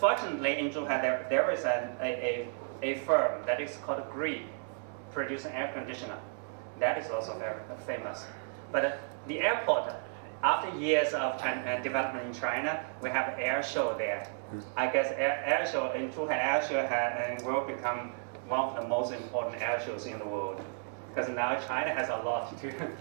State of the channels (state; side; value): silent; left; digital silence